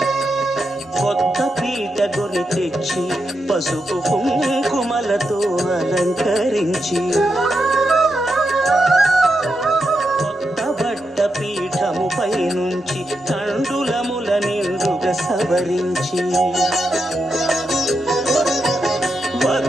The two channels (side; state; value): both; normal; correlation 0.85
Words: పసుపు కుంకుమలతో అలంకరించి కొత్త బట్ట పీఠముపై నుంచి తండులముల నిండుగా సవరించి